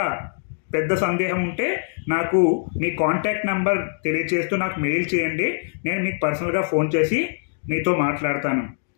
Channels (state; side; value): silent; right; digital silence